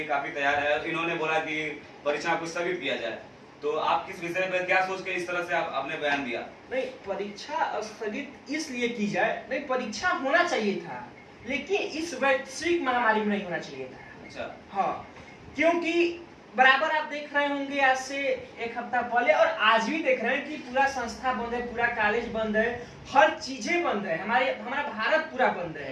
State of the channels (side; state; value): both; identical; correlation 1.00